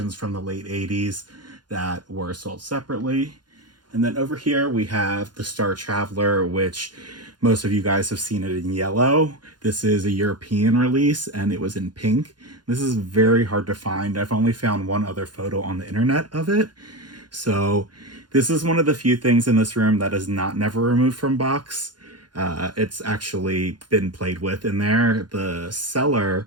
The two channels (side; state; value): left; late; 0.71 ms